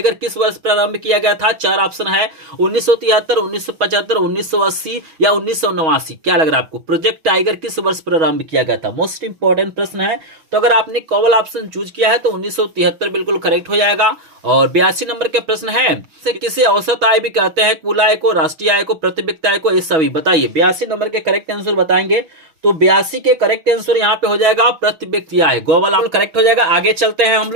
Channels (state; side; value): late; left; 6.2 ms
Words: किस वर्ष प्रारंभ किया गया था। 4 ऑप्शन है 1973, 1975, 1980 या 1989। क्या लग रहा है आपको, प्रोजेक्ट टाइगर किस वर्ष प्रारंभ किया गया था। मोस्ट इंपॉर्टेंट प्रश्न है। तो अगर आपने कॉवल ऑप्शन चूज किया है तो 1973 बिल्कुल करेक्ट हो जाएगा। और 82 नंबर के प्रश्न है किसे औसत आय भी कहते हैं। कुल आय को, राष्ट्रीय आय को, प्रति व्यक्ति आय को, ये सभी। बताइए 82 नंबर के करेक्ट आंसर बताएंगे। तो 82 के करेक्ट आंसर यहाँ पे हो जाएगा प्रति व्यक्ति आय। गोवाला करेक्ट हो जाएगा। आगे चलते हैं हम